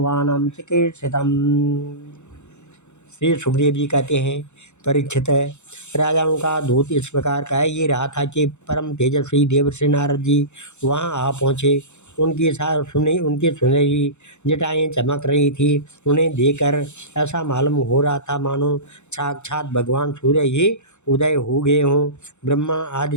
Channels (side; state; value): right; late; 0.83 ms